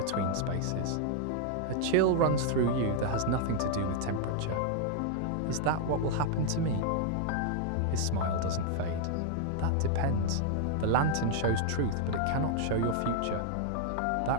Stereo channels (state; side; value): different; both; correlation 0.00